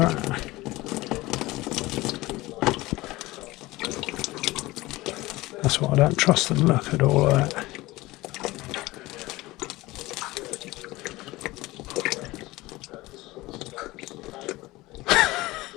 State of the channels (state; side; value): quieter; right; 19.6 dB